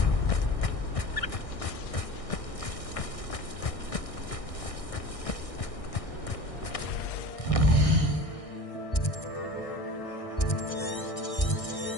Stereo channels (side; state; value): right; late; 1.6 ms